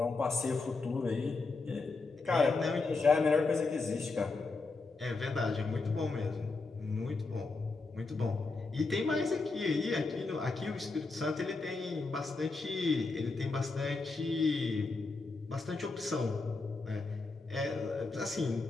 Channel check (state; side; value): quieter; right; 3.8 dB